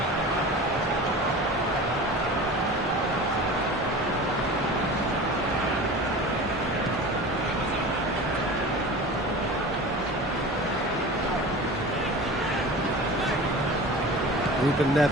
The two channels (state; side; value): normal; both; correlation 0.35